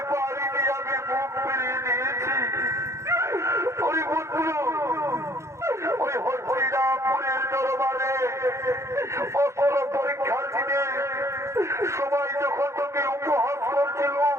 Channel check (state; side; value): late; left; 0.14 ms